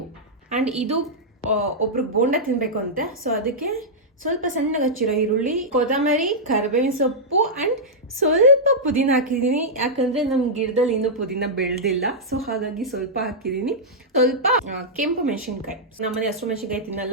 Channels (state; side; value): normal; both; correlation -0.09